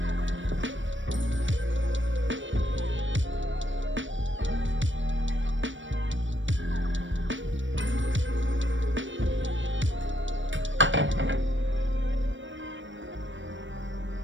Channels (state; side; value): late; left; 0.56 ms